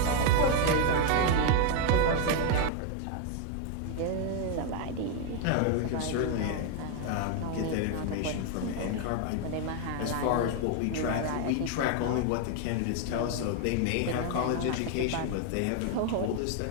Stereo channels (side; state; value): both; different; correlation 0.00